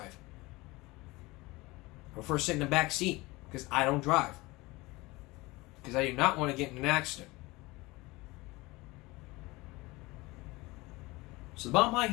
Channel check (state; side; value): quieter; right; 22.0 dB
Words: I prefer sitting in the back seat. Because I don't drive. Because I do not want to get in an accident. So the bottom line